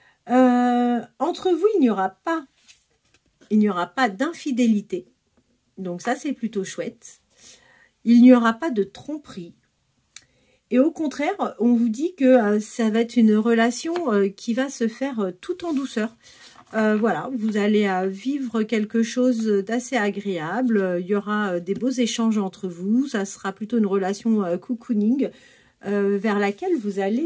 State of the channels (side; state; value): both; identical; correlation 1.00